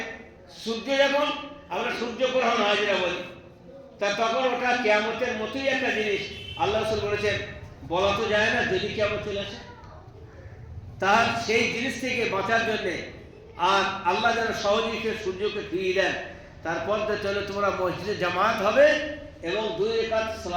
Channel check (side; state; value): both; identical; correlation 1.00